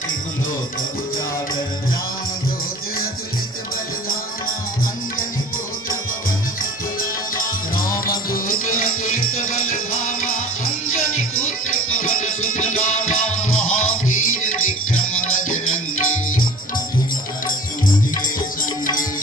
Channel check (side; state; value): both; normal; correlation 0.42